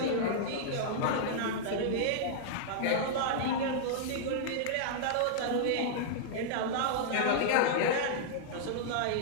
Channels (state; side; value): different; both; correlation -0.02